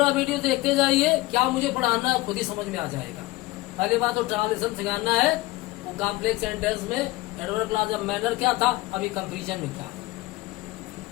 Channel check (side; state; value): right; quieter; 19.3 dB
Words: वीडियो देखते जाइए, क्या मुझे पढ़ाना है खुद ही समझ में आ जाएगा। पहली बात तो ट्रांसलेशन सिखाना है, वो कॉम्प्लेक्स सेंटेंस में एडवर्ब क्लास ऑफ मैनर क्या था, अभी कंपैरिजन में क्या।